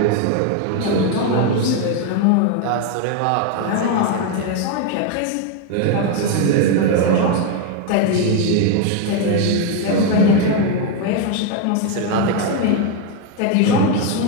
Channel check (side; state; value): both; different; correlation 0.01